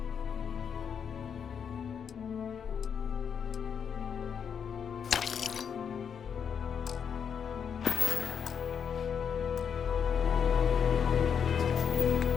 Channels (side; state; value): right; quieter; 7.3 dB